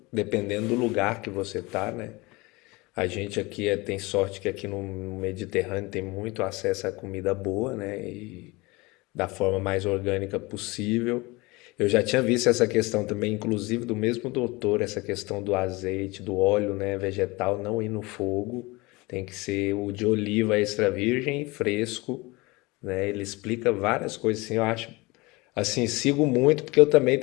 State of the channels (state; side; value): quieter; right; 23.7 dB